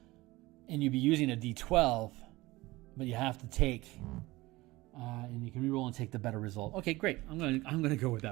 And you'd be using a D12, but you have to take, and you can re-roll and take the better result. Okay, great. I'm gonna go with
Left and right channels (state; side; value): quieter; left; 20.0 dB